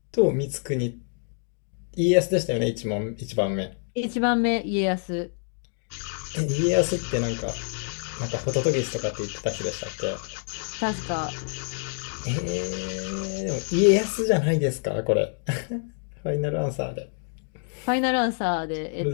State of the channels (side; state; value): right; silent; digital silence